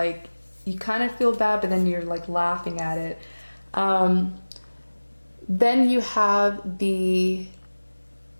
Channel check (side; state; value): both; inverted; correlation -1.00